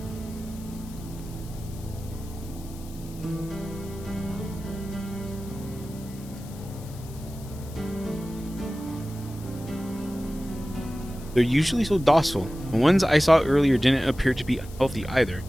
They're usually so docile. The ones I saw earlier didn't appear to be unhealthy either,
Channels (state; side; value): noise; left; hiss, 20 dB below the sound